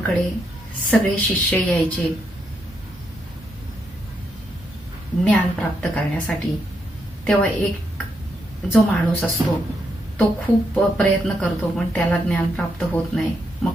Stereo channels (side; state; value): both; normal; correlation 0.79